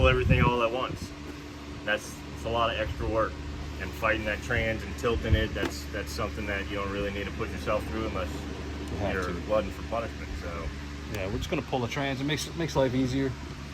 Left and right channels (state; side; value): identical; both; correlation 1.00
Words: everything all at once. It's a lot of extra work, and fighting that trans and tilting it, that's something that you don't really need to put yourself through unless you're blooding for punishment. So yeah, we're just gonna pull the trans. It makes life easier,